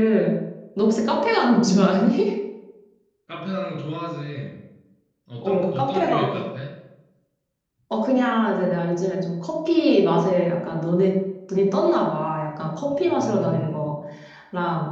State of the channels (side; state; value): both; identical; correlation 1.00